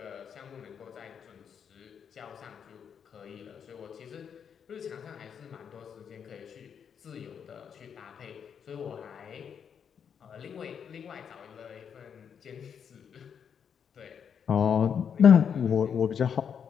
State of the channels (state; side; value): quieter; right; 7.5 dB